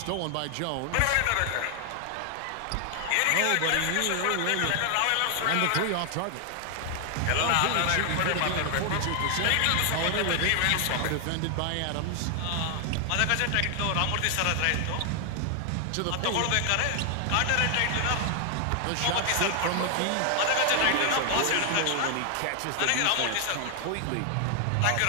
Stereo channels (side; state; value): both; different; correlation 0.00